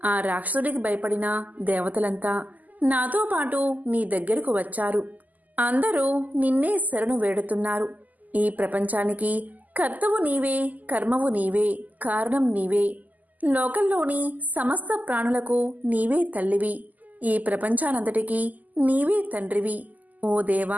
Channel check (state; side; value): late; left; 0.080 ms